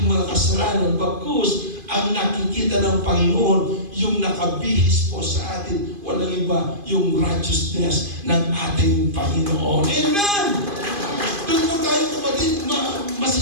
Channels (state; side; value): late; left; 2.5 ms